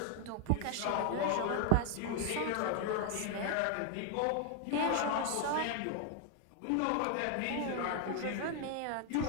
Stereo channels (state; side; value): different; both; correlation 0.00